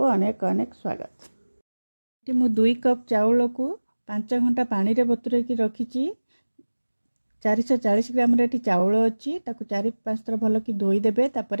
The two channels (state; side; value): inverted; both; correlation -1.00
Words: अनेक अनेक स्वागत। मु 2 कप चाउल को 5 घंटा पानी रे बतुरे की रखिछि। 440 ग्राम रे चाउल अछि, ताको 4-5 थर भल की धोई देबे।